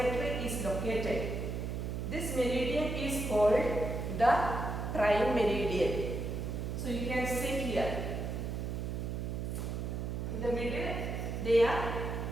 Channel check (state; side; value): noise; right; hum, 3 dB below the sound